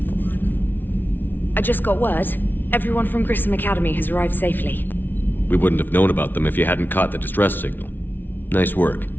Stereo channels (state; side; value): late; right; 0.092 ms